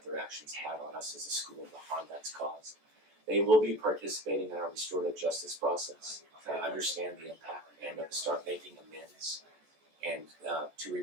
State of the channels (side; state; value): left; late; 14 ms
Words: their actions had on us as a school and the harm that's caused. They will be participating in our restorative justice process to understand the impact and to start making amends and to